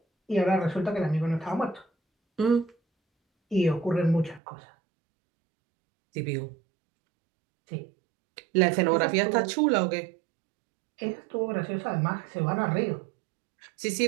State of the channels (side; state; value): left; drops out; at 4.4 s